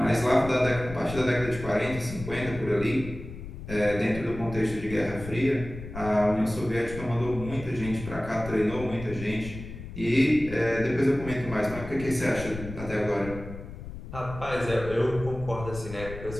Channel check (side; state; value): left; noise; rumble, 11 dB below the sound